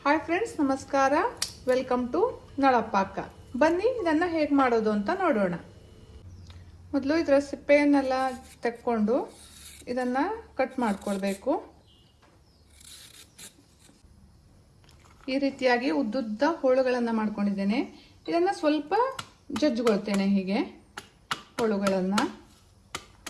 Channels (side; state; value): both; identical; correlation 1.00